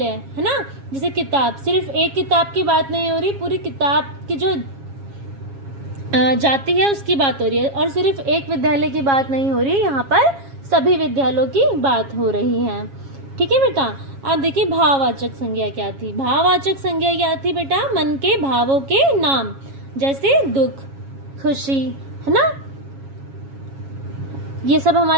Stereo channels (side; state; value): left; late; 7.3 ms